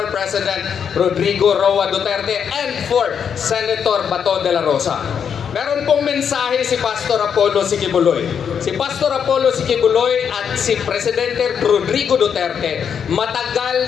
President Rodrigo Roa Duterte and for Senator Bato de la Rosa. Meron pong mensahe si Pastor Apollo C. Quiboloy. Si Pastor Apollo C. Quiboloy at si Presidente Rodrigo Duterte, matagal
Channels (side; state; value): right; quieter; 7.5 dB